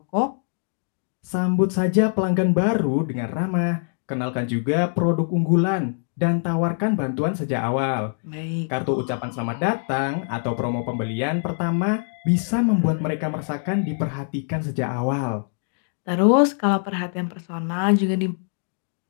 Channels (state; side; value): silent; right; digital silence